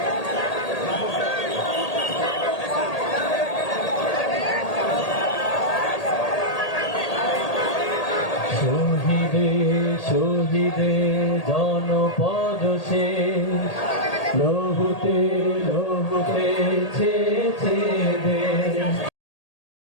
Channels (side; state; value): right; late; 1.8 ms